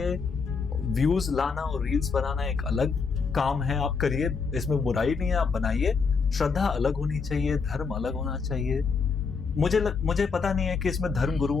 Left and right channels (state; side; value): quieter; right; 5.1 dB